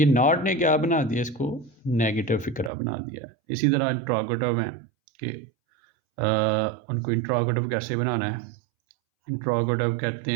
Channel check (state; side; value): drops out; left; at 2.7 s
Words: नॉट ने क्या बना दिया? इसको नेगेटिव फिक्रा बना दिया है। इसी तरह इंट्रोगेटिव हैं कि उनको इंट्रोगेटिव कैसे बनाना है? इंट्रोगेटिव कहते